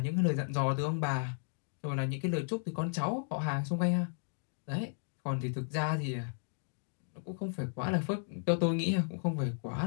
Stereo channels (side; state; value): right; silent; digital silence